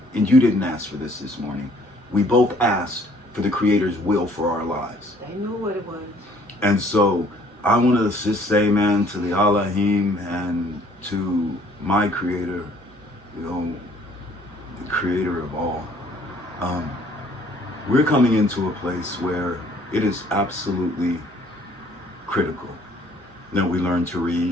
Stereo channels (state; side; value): normal; both; correlation 0.59